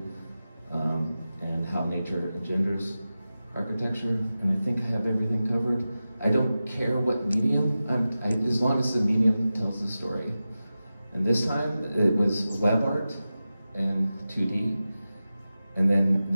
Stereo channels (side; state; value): both; inverted; correlation -0.94